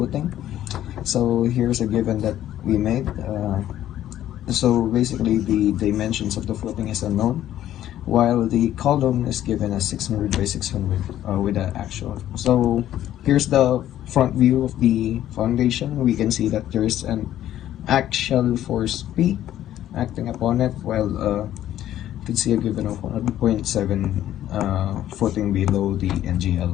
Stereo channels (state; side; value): quieter; right; 12.3 dB